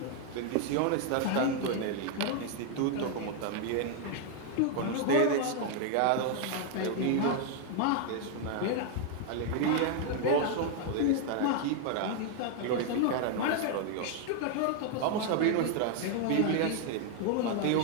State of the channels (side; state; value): both; different; correlation 0.00